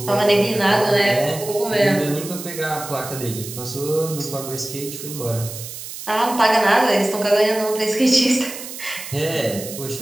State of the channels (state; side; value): noise; right; hiss, 11 dB below the sound